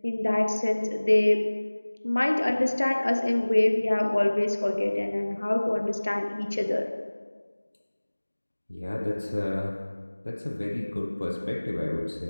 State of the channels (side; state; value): both; inverted; correlation -1.00